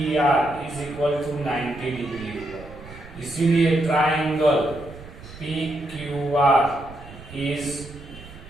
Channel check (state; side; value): noise; right; rumble, 17 dB below the sound